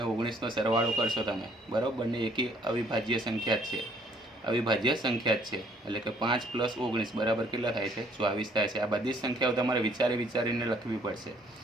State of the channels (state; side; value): normal; both; correlation 0.62